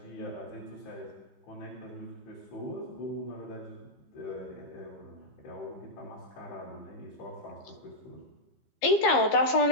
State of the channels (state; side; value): late; right; 15 ms